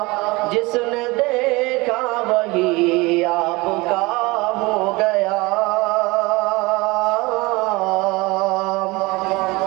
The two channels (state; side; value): quieter; left; 23.3 dB